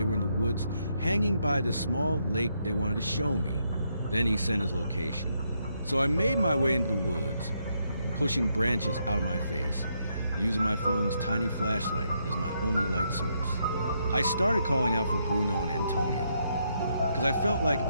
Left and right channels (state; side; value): inverted; both; correlation -0.77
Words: were in the woods hanging by this small lake they wanted to show me. Then he sent his location. So I made my way into the woods, pushing branches out of my face, using my phone's tiny flashlight as my only light source. I started calling out for Bruno and Antonio, because I felt like